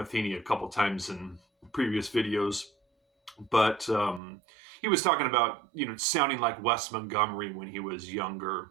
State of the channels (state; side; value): drops out; left; at 4.2 s